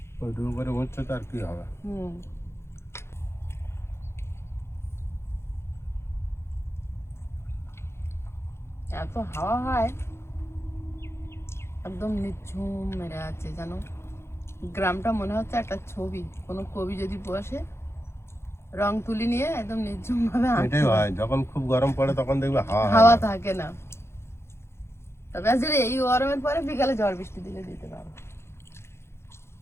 ওইটুকু করে উচ্ছে তো আর কি হবে। এত হাওয়া হয়, একদম নিঝুম মেরে আছে জানো। গ্রামটা মনে হচ্ছে একটা ছবি, কোনো কবি যদি বসে রং তুলি নিয়ে একদম নিঝুম ভাবে এটাই হয়, যখন খুব গরম পড়ে তখন দেখবে হাওয়া থাকে না। তবে আজ এই গরমের পরে বিকালে ঝড় বৃষ্টি দিলে দিতে পারো।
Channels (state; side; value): late; right; 0.12 ms